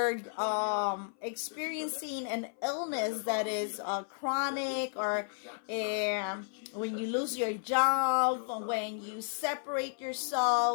experiencing an illness that is chronic, or when you lose your job, when you separate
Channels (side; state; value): right; silent; 56 dB below the other